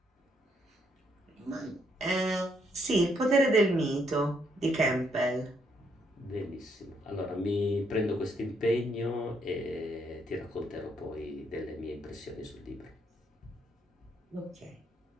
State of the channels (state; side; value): normal; both; correlation 0.73